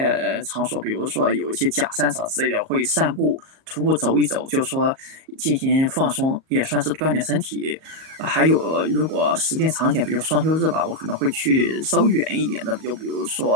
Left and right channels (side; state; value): left; late; 38 ms